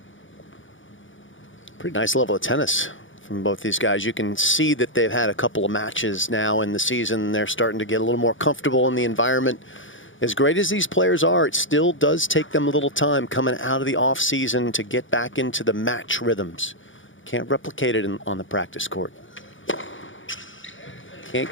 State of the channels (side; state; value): right; late; 0.56 ms